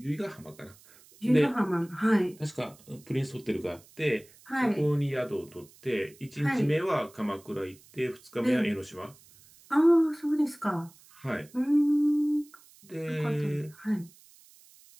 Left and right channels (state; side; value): noise; right; hiss, 26 dB below the sound